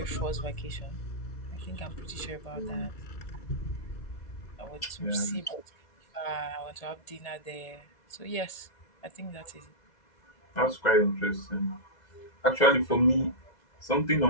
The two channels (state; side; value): late; right; 1.8 ms